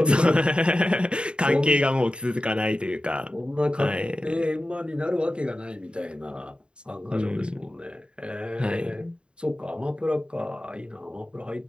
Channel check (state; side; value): late; left; 0.053 ms